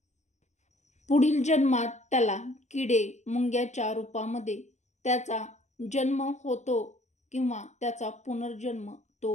जन्मात त्याला किडे मुंग्याच्या रूपामध्ये त्याचा जन्म होतो किंवा त्याचा पुनर्जन्म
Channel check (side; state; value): right; late; 0.34 ms